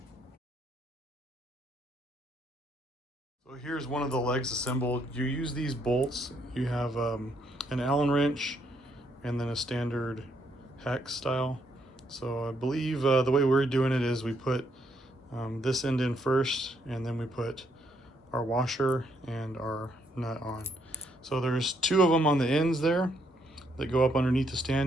So here's one of the legs assembled. You use these bolts. You have an Allen wrench and then a standard hex style. So I believe the way we're doing it is we put this end in first, and then we put our washer and our nut on. So there's 2 of them on the ends there that go up underneath the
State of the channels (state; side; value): normal; both; correlation 0.73